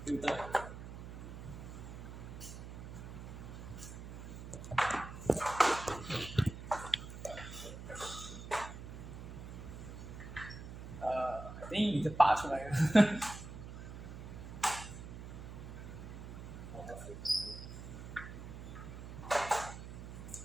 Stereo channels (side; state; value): right; noise; hum, 10 dB below the sound